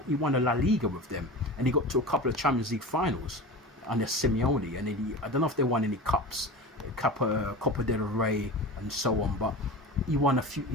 he won a La Liga with them, and he got to a couple of Champions League finals under Simeone, and then I don't know if they won any cups, Copa del Rey and so on, but he won a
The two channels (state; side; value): normal; both; correlation 0.31